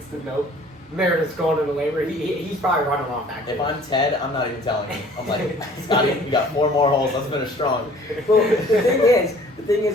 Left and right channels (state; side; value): normal; both; correlation 0.52